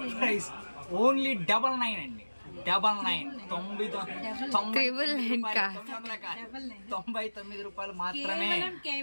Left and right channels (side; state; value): both; inverted; correlation -1.00